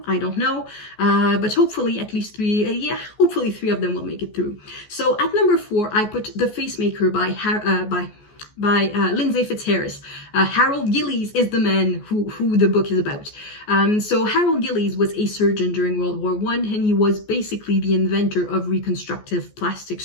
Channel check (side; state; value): right; late; 14 ms